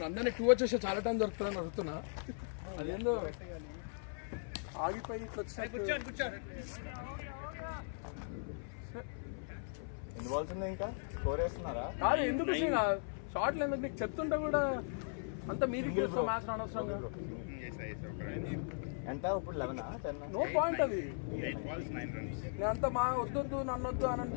అందరినీ 2 వచ్చేసి చాలా టైం దొరుకుతుందని అడుగుతున్నా. అదేందో ఆగిపోయి ఎన్ని బాల్స్ ఉన్నాయి ఇంకా? స్కోర్ వేస్తున్నారా? కాదు ఎందుకు షార్ట్లు ఎందుకు నీకు చెప్తుంటే కూడా అంత మీదికి వస్తాం మ్యాచ్ అనవసరంగా. ఎంత ఇప్పుడు 11 10? నో పాయింట్ అది. 8 balls 9 runs. నేను అంత మా వద్దొద్దు నన్ను వద్దు అని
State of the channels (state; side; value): silent; right; 52 dB below the other